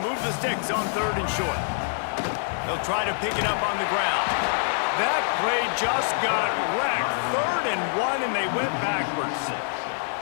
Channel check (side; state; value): right; silent; 61 dB below the other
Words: the sticks on 3rd and short. They'll try to pick it up on the ground. That play just got wrecked. 3rd and 1, and they went backwards.